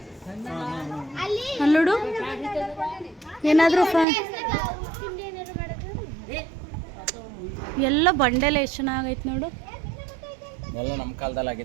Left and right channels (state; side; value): drops out; left; at 4.0 s